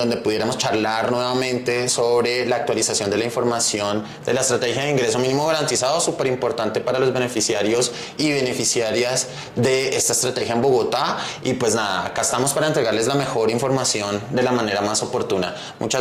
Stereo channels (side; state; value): both; identical; correlation 1.00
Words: pudiéramos charlar nuevamente sobre la actualización de la información de la estrategia de ingreso mínimo garantizado, súper importante para los beneficiarios y beneficiarias de esta estrategia en Bogotá. Y pues nada, acá estamos para entregarles la mejor información de la manera más oportuna.